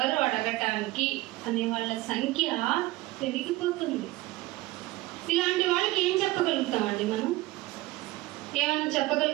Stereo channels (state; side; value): quieter; left; 18.6 dB